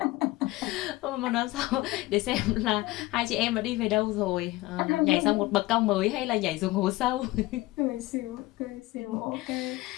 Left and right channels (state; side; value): quieter; right; 19.4 dB